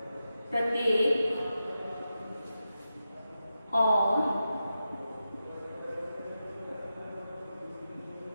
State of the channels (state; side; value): inverted; both; correlation -0.90